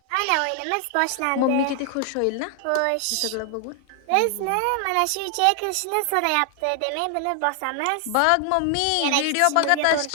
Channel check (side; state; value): both; different; correlation 0.00